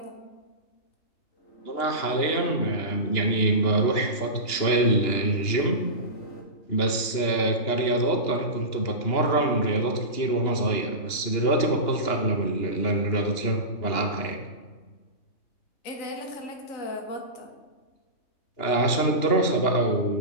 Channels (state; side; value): late; right; 2.9 ms